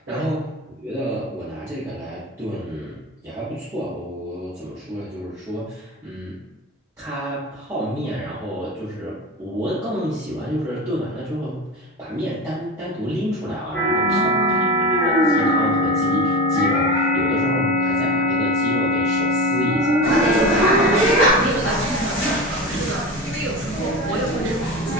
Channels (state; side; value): normal; both; correlation 0.27